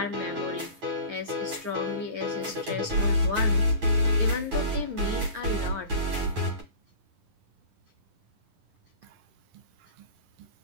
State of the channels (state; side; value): late; left; 9.4 ms